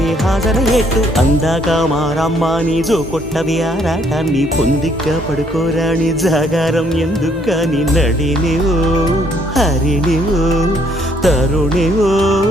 హాజరయ్యేట్టు అందాక మారమ్మ నీ జో కొట్టవి ఆరాటాన్ని పొందిగ్గా పడుకోరాని జాగారం ఎందుకు నీ నడినివో హరినివో తరుణివో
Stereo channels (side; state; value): both; normal; correlation 0.67